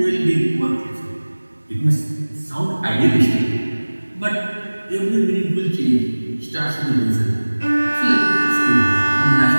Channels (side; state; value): both; inverted; correlation -1.00